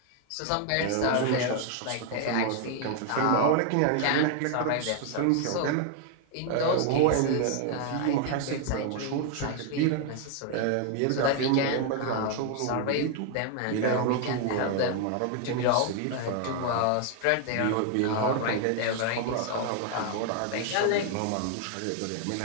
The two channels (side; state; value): both; different; correlation 0.00